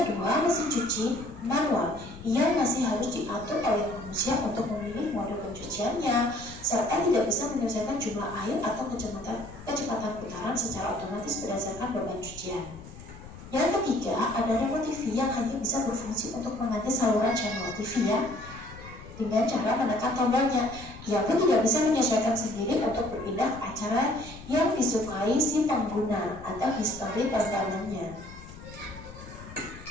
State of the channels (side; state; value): left; noise; rumble, 16 dB below the sound